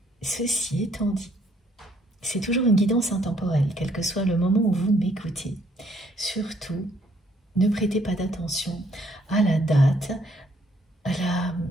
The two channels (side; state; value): both; normal; correlation 0.66